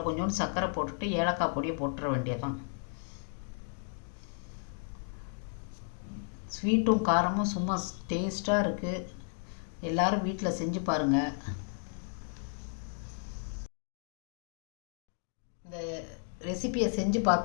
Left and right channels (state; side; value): silent; right; 55 dB below the other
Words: கொஞ்சோண்டு சர்க்கரை போட்டுட்டு ஏலக்காய் பொடியை போட்டுற வேண்டியதான். ஸ்வீட்டும் காரமும் சும்மா டேஸ்ட்டாக இருக்குது. எல்லோரும் வீட்டில் செஞ்சு பாருங்கள். இந்த ரெசிபியை செஞ்சு